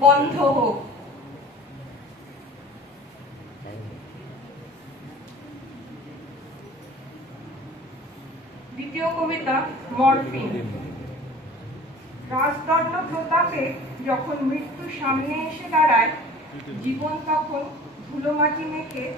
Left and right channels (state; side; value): normal; both; correlation 0.44